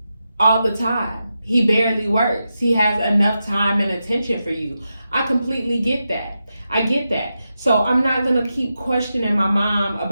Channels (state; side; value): inverted; both; correlation -0.89